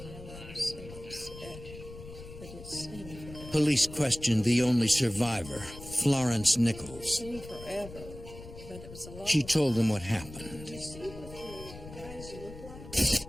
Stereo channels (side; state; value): left; noise; rumble, 15 dB below the sound